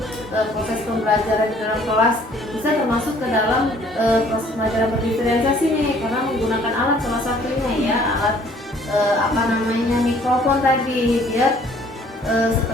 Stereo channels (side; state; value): both; normal; correlation 0.58